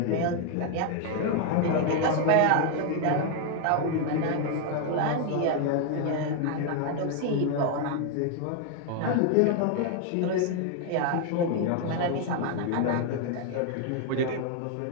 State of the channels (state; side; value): different; both; correlation 0.01